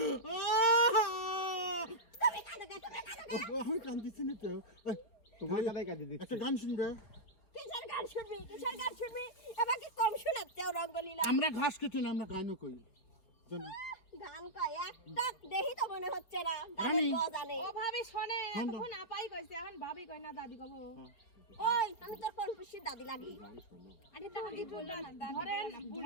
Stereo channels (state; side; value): late; right; 4.6 ms